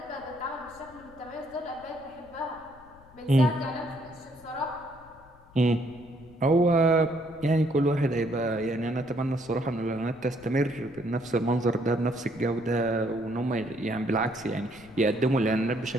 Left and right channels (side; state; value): left; noise; rumble, 24 dB below the sound